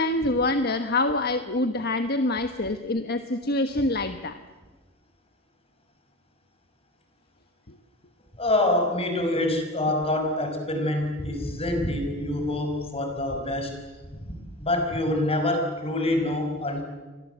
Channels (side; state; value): both; normal; correlation 0.27